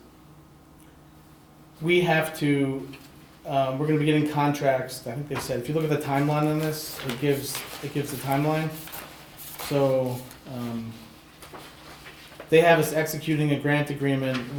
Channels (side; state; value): both; identical; correlation 1.00